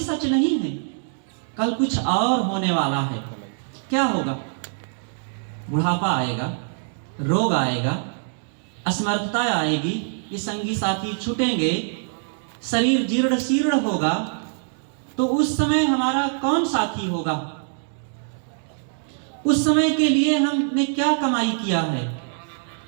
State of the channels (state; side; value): silent; left; 63 dB below the other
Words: नहीं है, कल कुछ और होने वाला है। क्या होगा? बुढ़ापा आएगा, रोग आएगा, असमर्थता आएगी, ये संगी साथी छूटेंगे, शरीर जीर्ण शीर्ण होगा। तो उस समय हमारा कौन साथी होगा? उस समय के लिए हमने क्या कमाई किया है?